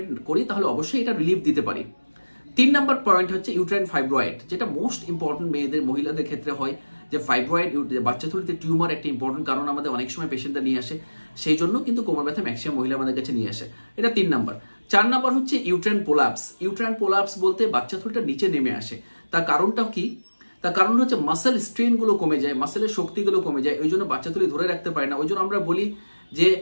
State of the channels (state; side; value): inverted; both; correlation -1.00